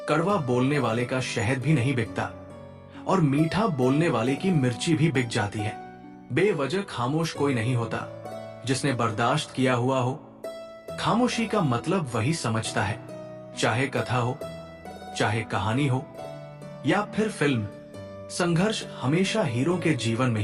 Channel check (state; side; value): identical; both; correlation 1.00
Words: कड़वा बोलने वाले का शहद भी नहीं बिकता और मीठा बोलने वाले की मिर्ची भी बिक जाती है। बेवजह खामोश कोई नहीं होता। जिसने बर्दाश्त किया हुआ हो, खामोशी का मतलब वही समझता है। चाहे कथा हो, चाहे कहानी हो या फिर फिल्म, संघर्ष हमेशा हीरो के जीवन में